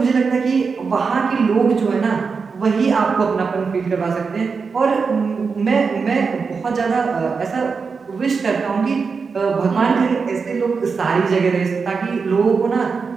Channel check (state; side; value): quieter; left; 5.2 dB